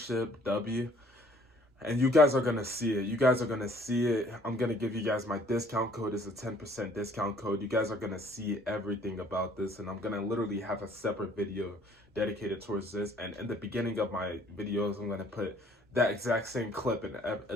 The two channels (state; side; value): normal; both; correlation 0.58